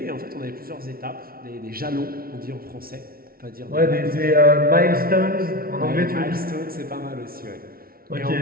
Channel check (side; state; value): left; late; 0.43 ms